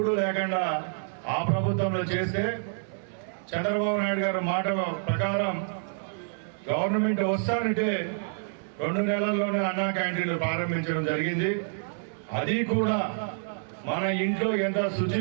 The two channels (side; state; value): left; silent; digital silence